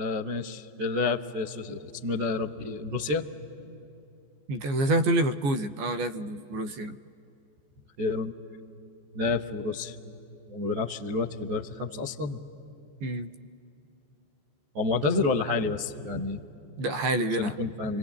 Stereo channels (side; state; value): left; late; 14 ms